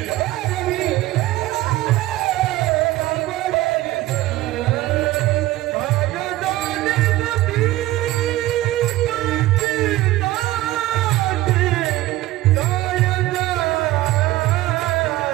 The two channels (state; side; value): quieter; left; 16.7 dB